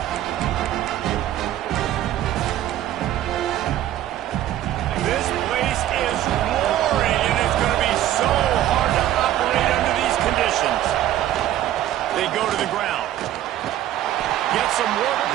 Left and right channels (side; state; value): left; quieter; 12.8 dB